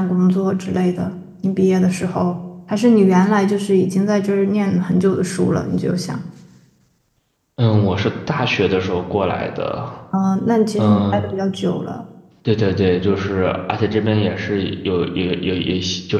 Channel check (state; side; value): identical; both; correlation 1.00